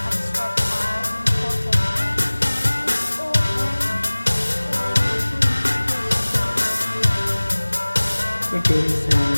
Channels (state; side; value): inverted; both; correlation -1.00